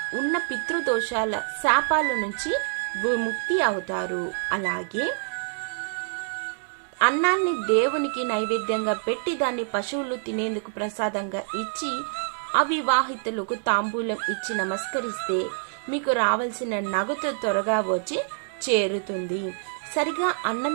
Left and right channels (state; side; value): silent; left; 61 dB below the other